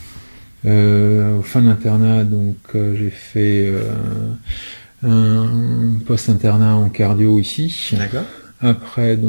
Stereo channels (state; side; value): inverted; both; correlation -1.00